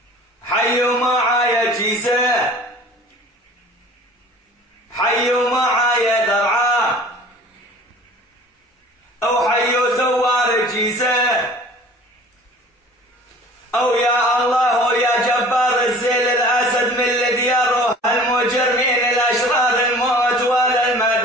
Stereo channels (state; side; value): normal; both; correlation 0.46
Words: حيوا معايا جيزة، حيوا معايا درعا، أو حيوا ثوار جيزة، أو يا الله ويا جبار الزيل الأسد من لدياره المجرمين الأشرار، الموت ولا